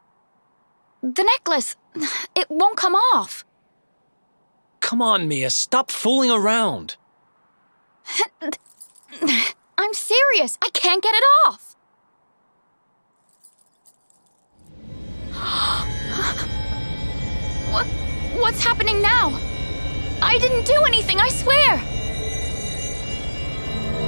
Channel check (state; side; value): inverted; both; correlation -1.00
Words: The necklace, it won't come off. Come on, Mia, stop fooling around. I'm serious, I can't get it off. What's happening now? I didn't do anything, I swear!